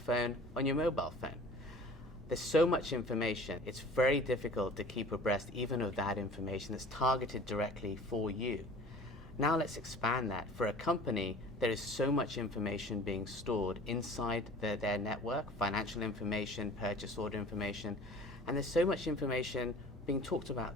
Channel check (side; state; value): both; normal; correlation 0.45